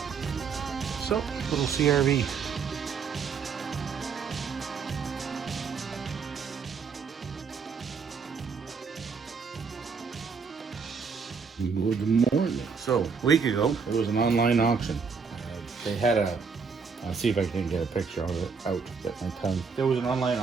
So, little CRV. Good morning. So, a week ago, it was an online auction. They had I'll see if I can get a picture of it out, get my tongue. There was an online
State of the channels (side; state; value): left; quieter; 5.5 dB